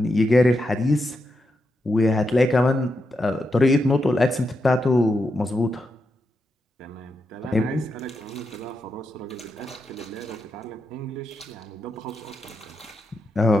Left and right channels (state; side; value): normal; both; correlation 0.85